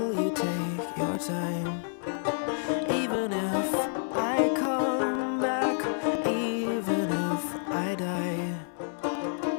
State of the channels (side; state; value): right; silent; digital silence